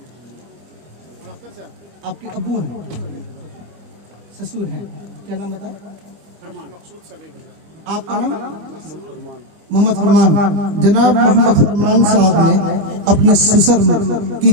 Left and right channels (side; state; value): left; late; 25 ms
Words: आपके अब्बू हैं, ससुर हैं, क्या नाम बताए? आपका नाम? मोहम्मद फरमान। जनाब मोहम्मद फरमान साहब ने अपने ससुर की